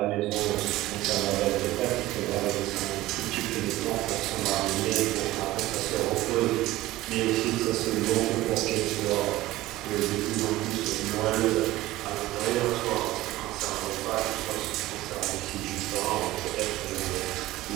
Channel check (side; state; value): left; quieter; 16.9 dB